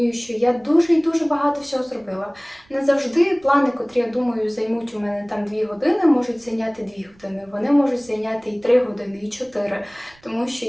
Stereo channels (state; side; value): noise; right; rumble, 30 dB below the sound